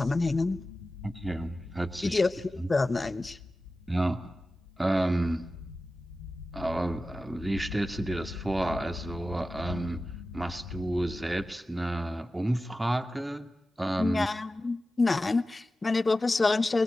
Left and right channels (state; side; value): normal; both; correlation 0.94